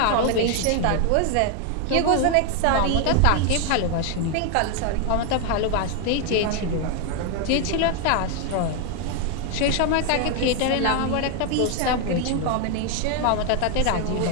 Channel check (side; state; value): both; different; correlation 0.01